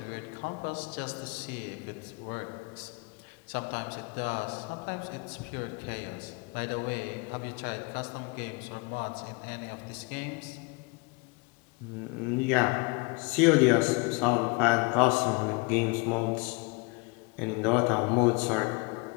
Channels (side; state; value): right; quieter; 29.1 dB